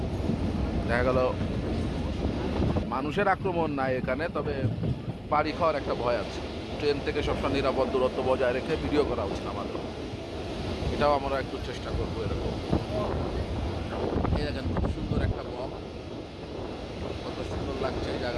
দেখা গেল মানুষের আক্রমণ নাই এখানে, তবে বাড়ি খাওয়ার একটা ভয় আছে। ট্রেন থেকে সবসময় নিরাপদ দূরত্ব বজায় রেখে ভিডিও করা উচিত আমাদের, এটাও আমরা একটু চেষ্টা করবো এরকম। এই দেখেন খুব সুন্দর একটা বক, কত সুন্দর লাগছে এই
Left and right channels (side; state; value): both; identical; correlation 1.00